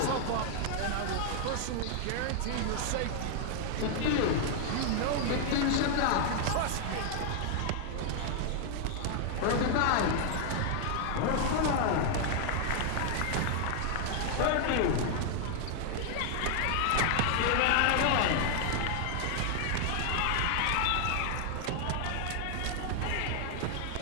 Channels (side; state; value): both; different; correlation 0.00